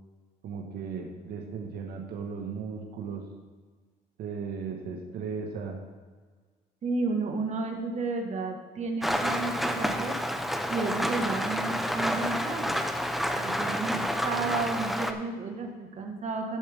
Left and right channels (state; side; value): normal; both; correlation 0.69